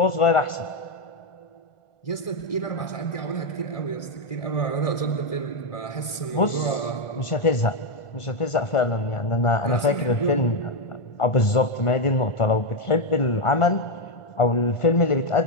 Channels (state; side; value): late; right; 1.4 ms